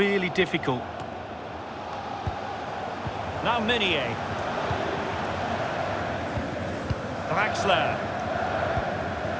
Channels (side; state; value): both; identical; correlation 1.00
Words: difficult. Now Meunier. Draxler.